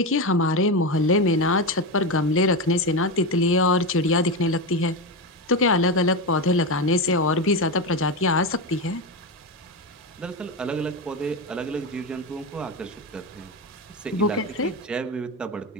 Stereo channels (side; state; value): both; normal; correlation 0.15